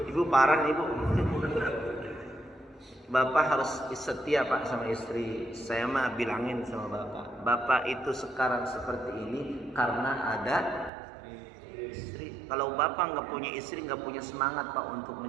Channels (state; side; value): drops out; left; at 10.9 s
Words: Ibu parah nih Bu. Bapak harus setia Pak sama istri. Saya mah bilangin sama Bapak, Bapak itu sekarang seperti ini karena ada istri. Kalau Bapak nggak punya istri, nggak punya semangat Pak untuk